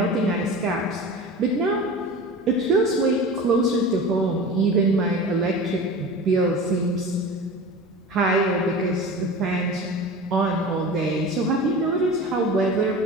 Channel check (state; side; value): normal; both; correlation 0.34